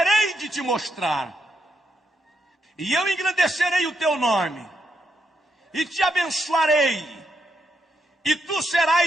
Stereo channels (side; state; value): both; normal; correlation 0.81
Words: de te mostrar. E eu engrandecerei o teu nome, e te abençoarei, e tu